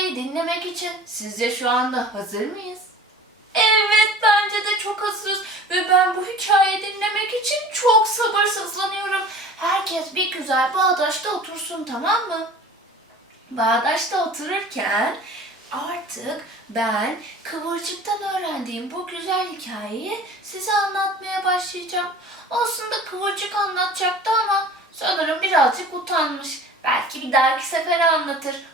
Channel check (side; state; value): both; normal; correlation 0.42